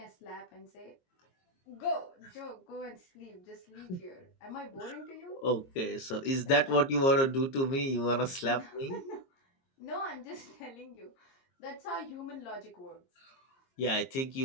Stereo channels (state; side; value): late; right; 22 ms